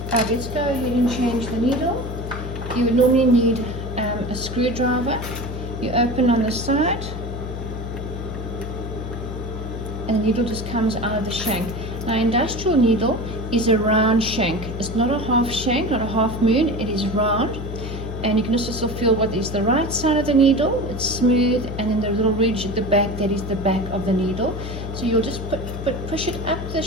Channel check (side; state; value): left; noise; hum, 7 dB below the sound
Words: Let's go ahead and change the needle. You would normally need a screwdriver. You open on the side, and the needle just comes out of the shank. Now, industrial needle is a round shank. It's not a half shank, not a half moon. It is round, and you can also feel what is the right side of the needle. It's smooth, and then the little ridge at the back, that is the back of the needle. So you'll just push it up the